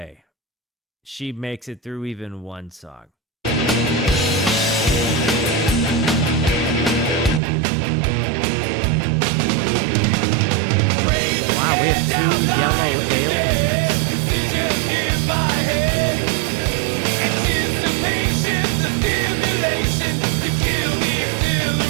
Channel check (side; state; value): left; drops out; at 7.4 s